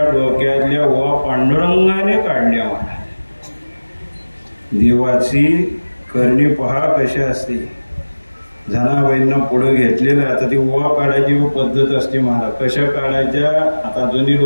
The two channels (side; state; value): both; inverted; correlation -1.00